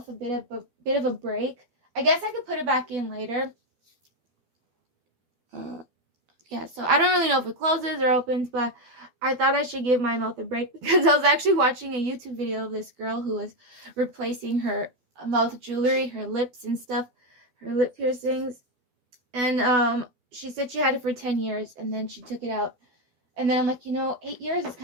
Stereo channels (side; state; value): left; late; 12 ms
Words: a bit of a break. I guess I could put it back in later. Yeah, so I don't really know if it closes or opens, but I thought I should give my mouth a break because I was actually watching a YouTube video of this girl who was replacing her mouth jewelry, her lips and stuff, her lip piercings. And she said she had it for 10 years and then she took it out. And then I'm like, you know, 8 years is